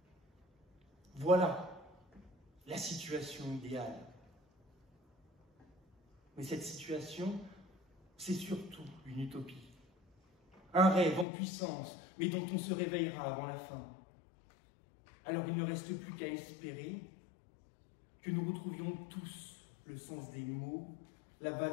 Voilà la situation idéale. Mais cette situation, c'est surtout une utopie. Un rêve en puissance, mais dont on se réveillera avant la fin. Alors il ne reste plus qu'à espérer que nous retrouvions tous le sens des mots, la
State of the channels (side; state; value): right; drops out; at 11.2 s